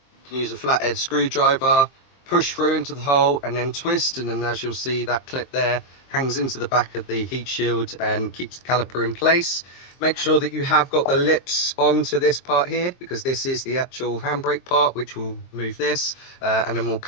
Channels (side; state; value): right; late; 23 ms